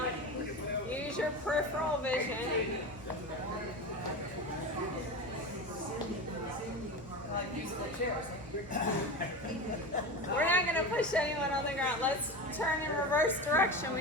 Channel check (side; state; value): both; normal; correlation 0.25